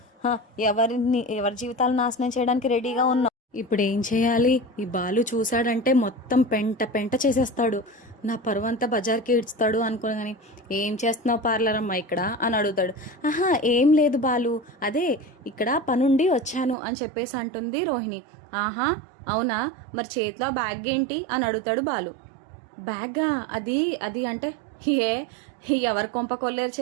ఎవరి జీవితాలు నాశనం చేయడానికి రెడీగా ఉన్నావు? ఇప్పుడు ఏం చేయాలి? ఈ బాలు చూశాడంటే మొత్తం పెంట పెంట చేసేస్తాడు, నా పరువంతా బజార్కి ఇడ్స్తాడు అనుకోగాని, ఏం చేస్తున్నావు పార్లర్ అమ్మా ఇక్కడ అని అడుగుతాడు. ఏం లేదు బాలు, అదే ఇక్కడ పనుండి వచ్చాను అని చెప్పేసి అంటుంది రోహిణి. అవునా, మరి చేతిలో బ్యాగ్ ఏంటి అని అడుగుతాడు బాలు. బ్యాగా? అది అంటే ఎవరి కొంప కొల్లేరు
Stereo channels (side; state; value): left; drops out; at 16.8 s